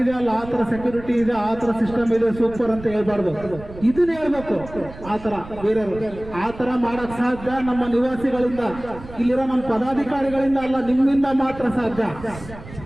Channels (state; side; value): noise; right; rumble, 15 dB below the sound